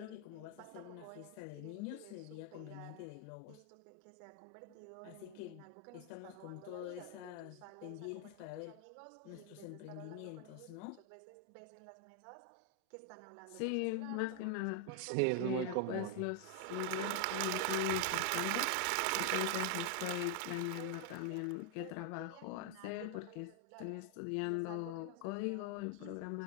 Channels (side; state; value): both; different; correlation 0.00